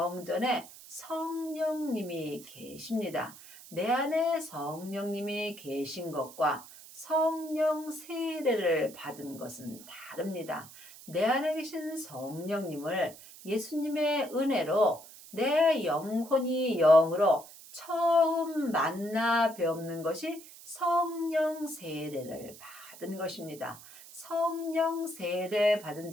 성령님이 계십니다. 내 안에 성령님이 계신 것과 성령 세례를 받은 것은 다릅니다. 내 안에 계신 성령님을 예수님의 은혜로 내 영혼이 영으로 처음 만나 뵙는 것이 성령 세례를 받은 것입니다. 성령 세례 받은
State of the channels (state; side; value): noise; right; hiss, 18 dB below the sound